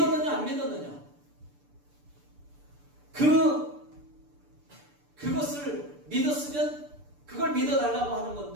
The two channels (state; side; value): late; left; 6.8 ms